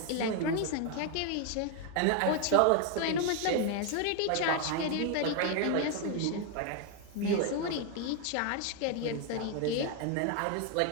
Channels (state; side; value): different; both; correlation 0.01